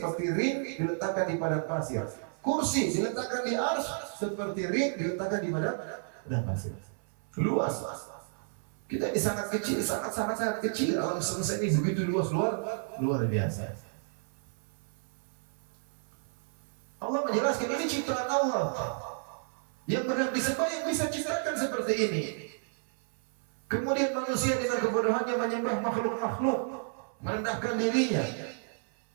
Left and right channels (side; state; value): left; silent; 57 dB below the other